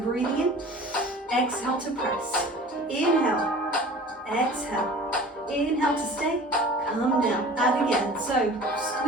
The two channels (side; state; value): both; normal; correlation 0.43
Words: in, exhale to press. Inhale, exhale. Inhale to stay, come down. Add again. So